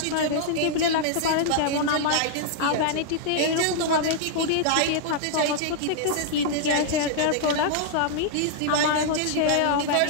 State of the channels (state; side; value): different; both; correlation -0.01